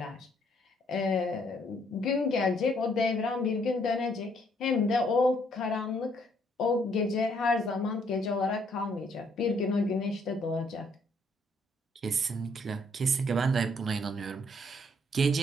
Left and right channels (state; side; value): normal; both; correlation 0.68